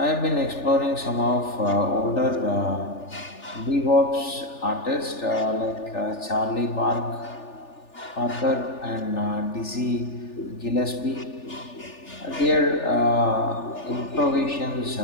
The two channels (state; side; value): late; right; 3.4 ms